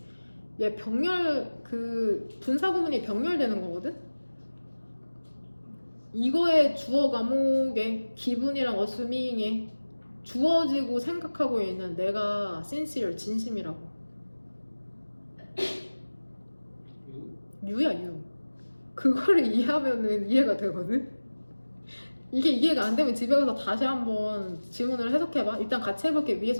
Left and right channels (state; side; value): inverted; both; correlation -1.00